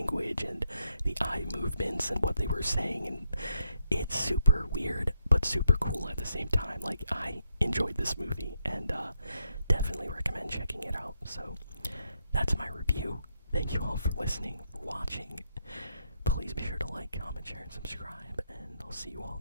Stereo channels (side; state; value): both; inverted; correlation -0.79